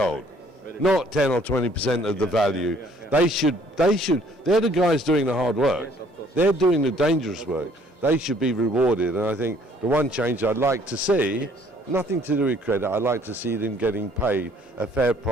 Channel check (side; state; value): both; normal; correlation 0.60